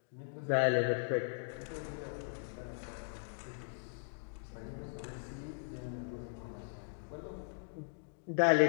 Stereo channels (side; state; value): right; silent; digital silence